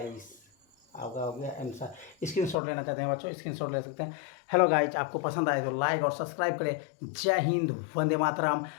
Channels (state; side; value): drops out; right; at 2.6 s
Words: आपका हो गया आंसर। स्क्रीनशॉट लेना चाहते हैं बच्चों, स्क्रीनशॉट ले सकते हैं। हेलो गाइज, आपको पसंद आए तो लाइक और सब्सक्राइब करें। जय हिंद, वंदे मातरम।